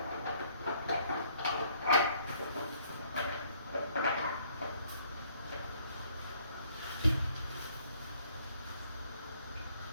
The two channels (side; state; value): both; inverted; correlation -0.63